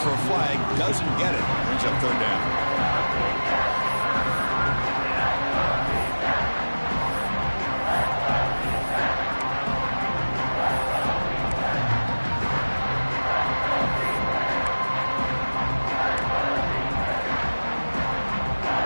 for a flag, doesn't get it. Brings up 3rd down.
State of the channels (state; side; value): inverted; both; correlation -1.00